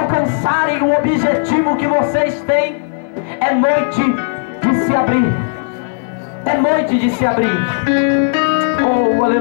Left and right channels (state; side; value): silent; right; digital silence